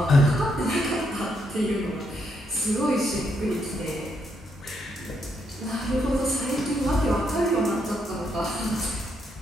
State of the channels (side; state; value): both; normal; correlation 0.77